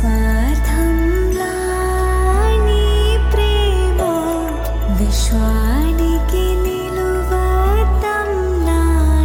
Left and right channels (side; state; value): both; identical; correlation 1.00